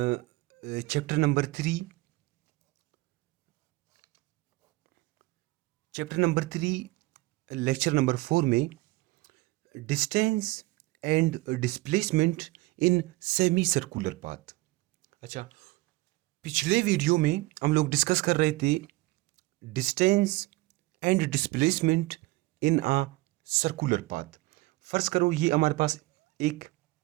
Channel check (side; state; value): left; quieter; 21.2 dB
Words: number 3। Chapter number 3 lecture number 4 में distance and displacement in semi circular path. अच्छा, पिछले वीडियो में हम लोग डिस्कस कर रहे थे distance and displacement in a circular path. फर्ज करो ये हमारे पास एक